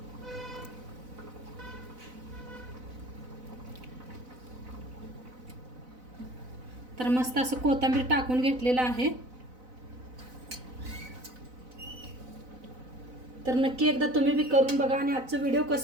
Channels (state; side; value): late; left; 4.0 ms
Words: तर मस्त असं कोथिंबीर टाकून घेतलेलं आहे. तर नक्की एकदा तुम्ही बी करून बघा आणि आजचं व्हिडिओ